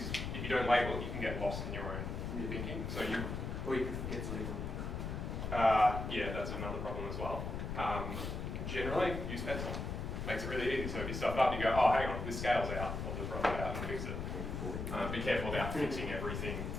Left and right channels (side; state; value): left; noise; rumble, 4 dB below the sound